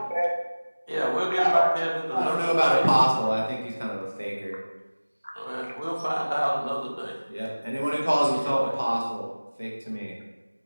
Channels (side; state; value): both; inverted; correlation -1.00